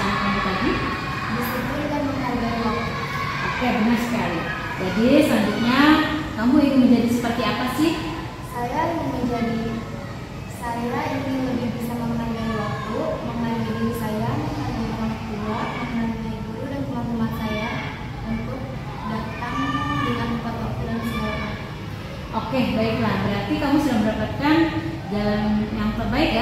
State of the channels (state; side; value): identical; both; correlation 1.00